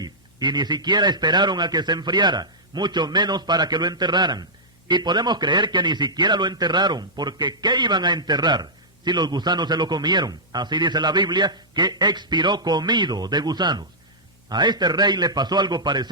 y ni siquiera esperaron a que se enfriara, mucho menos para que lo enterraran. Y podemos creer que ni siquiera lo enterraron, porque ¿qué iban a enterrar si los gusanos se lo comieron? Así dice la Biblia, que expiró comido de gusanos. A este rey le pasó algo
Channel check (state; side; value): normal; both; correlation -0.12